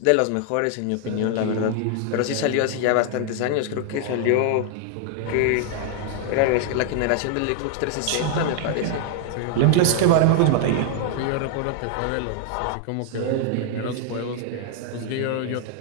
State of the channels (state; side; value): different; both; correlation 0.00